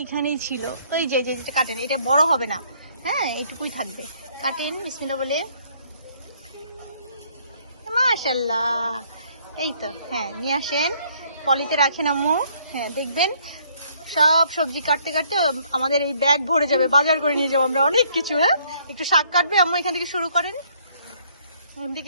ছিল। ওই যে যেটা কাটেন, এটা বড় হবে না, হ্যাঁ এইটুকুই থাকবে। কাটেন বিসমিল্লাহ বলে। মাশাআল্লাহ, এই তো। হ্যাঁ নিয়ে আসেন, পলিতে রাখেন আম্মু। হ্যাঁ দেখবেন সব সবজি কাটতে কাটতে আমাদের এই ব্যাগ ভরে যাবে, বাজার করে নিয়ে যাবো আমরা অনেক কিছু। হ্যাঁ একটু শাক কাটবে আম্মু, এখান থেকে শুরু করেন। এখান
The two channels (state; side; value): inverted; both; correlation -0.64